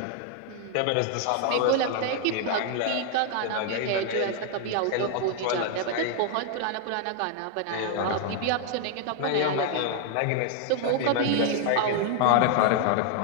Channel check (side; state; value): both; different; correlation 0.00